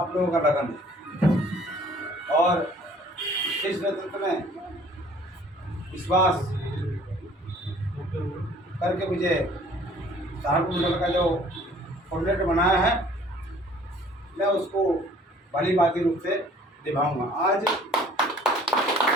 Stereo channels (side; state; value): both; normal; correlation 0.54